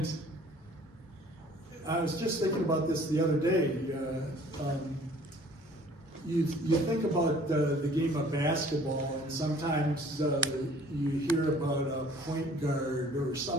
I was just thinking about this the other day. You think about the game of basketball, and sometimes you hear about a point guard or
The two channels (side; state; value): both; normal; correlation 0.54